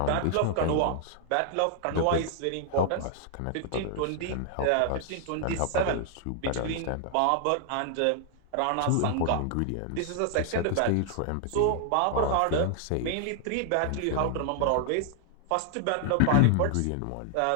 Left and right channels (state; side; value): different; both; correlation 0.00